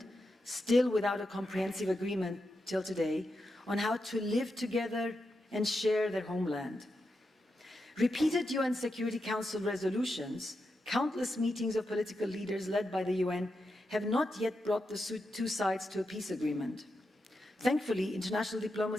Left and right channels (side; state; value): both; normal; correlation 0.87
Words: still without a comprehensive agreement till today, on how to live together and share their homeland. Repeated UN Security Council resolutions, countless meetings of political leaders led by the UN, have not yet brought the two sides to a peace agreement. Thankfully, international